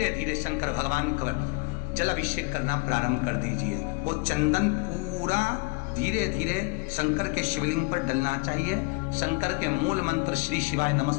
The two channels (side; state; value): right; quieter; 27.8 dB